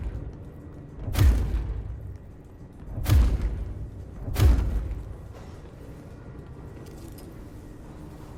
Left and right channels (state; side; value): identical; both; correlation 1.00